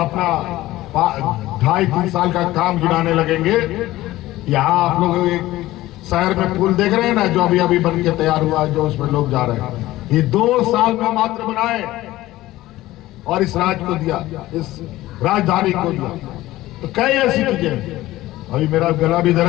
2.5-3 साल का काम गिनाने लगेंगे। यहाँ आप लोग एक शहर में पुल देख रहे हैं ना, जो अभी अभी बन के तैयार हुआ है, जो उसमें लोग जा रहे हैं, ये 2 साल में मात्र बनाए और इस राज्य को दिया, इस राजधानी को दिया। तो कई ऐसी चीजें। अभी मेरा गला भी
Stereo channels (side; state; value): right; quieter; 16.6 dB